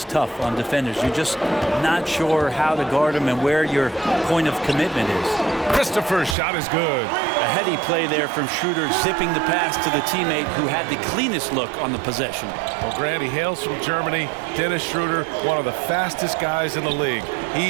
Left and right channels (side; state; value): left; drops out; at 6.4 s